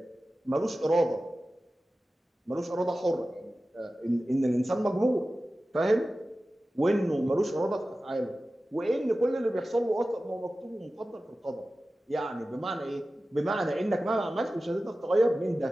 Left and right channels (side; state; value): both; normal; correlation 0.95